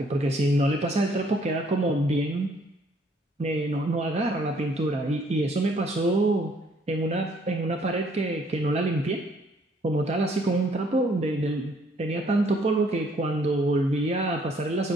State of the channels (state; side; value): normal; both; correlation 0.64